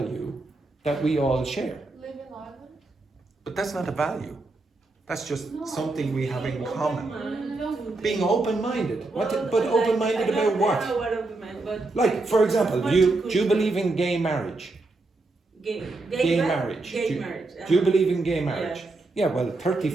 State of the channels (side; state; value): left; quieter; 3.2 dB